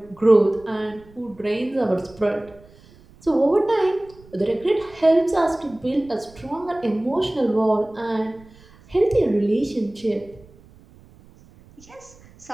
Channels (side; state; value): right; noise; rumble, 25 dB below the sound